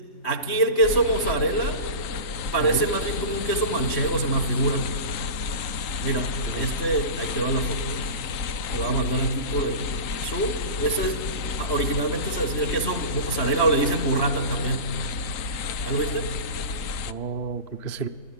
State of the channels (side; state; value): right; late; 3.1 ms